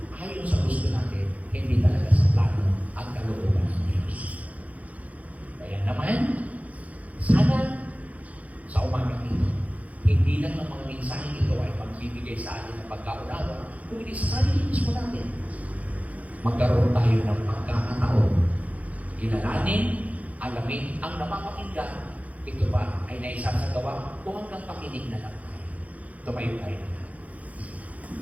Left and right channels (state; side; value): late; left; 0.070 ms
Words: ayon sa gusto natin, hindi talaga sa plano at kalooban ng Diyos. Kaya naman, sana sa umagang ito, hindi lang ng mga mensaheng ito ay magbibigay sa atin ng pagkaunawa, kung hindi sa sarili mismo natin. Magkaroon tayo ng pagkakataon, kilalanin, alamin ang napapakinggan. Ito ba ay naisasagawa o hanggang pakinig na lang tayo? Tumayo tayo na.